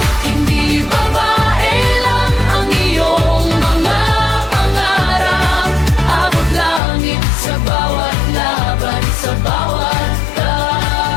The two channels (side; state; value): right; drops out; at 6.8 s